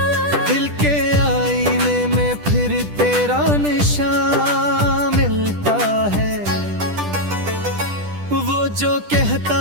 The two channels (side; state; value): left; late; 10 ms